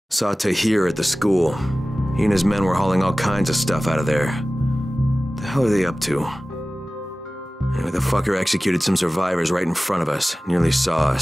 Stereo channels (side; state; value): both; normal; correlation 0.97